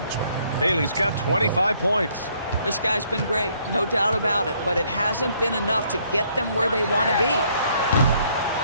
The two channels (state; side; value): inverted; both; correlation -0.67